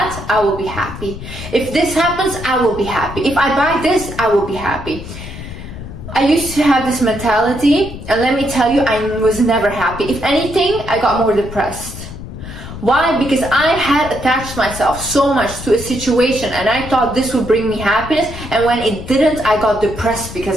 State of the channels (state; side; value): noise; left; rumble, 11 dB below the sound